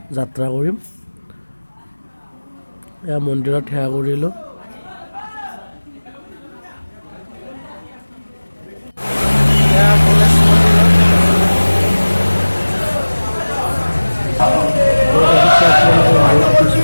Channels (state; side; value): inverted; both; correlation -1.00